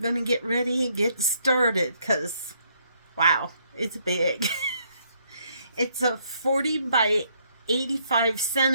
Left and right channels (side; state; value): both; inverted; correlation -0.70